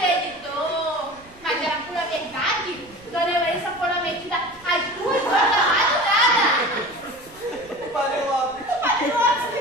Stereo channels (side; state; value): right; noise; rumble, 25 dB below the sound